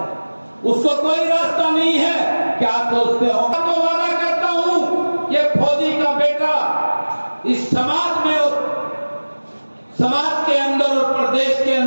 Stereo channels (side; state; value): both; inverted; correlation -1.00